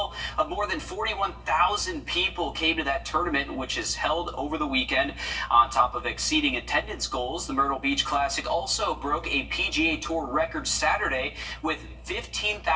of more than 41,000 people came to that tournament, which is held over the weekend. On top of exceeding attendance goals, the Myrtle Beach Classic also broke a PGA Tour record Saturday with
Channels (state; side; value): identical; both; correlation 1.00